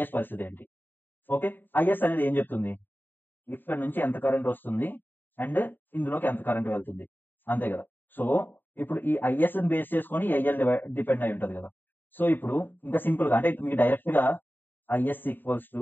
పరిస్థితి ఏంటి? ఓకే, ఐఎస్ అనేది ఏం చెప్తుంది, ఇక్కడ నుంచి ఎంత కరెంట్ వస్తుంది అండ్ ఇందులోకి ఎంత కరెంట్ వెళ్తుంది, అంతే కదా. సో ఇప్పుడు ఈ ఐఎస్ బేస్ చేసుకొని ఐఎల్ డిపెండ్ అయి ఉంటది కదా. సో ఇప్పుడు ఇంకా సింపుల్ గా అంటే మీకు డైరెక్ట్ గా IS equals to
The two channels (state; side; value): late; right; 0.093 ms